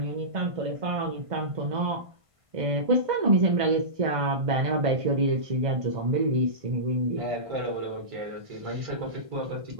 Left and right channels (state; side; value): late; left; 1.5 ms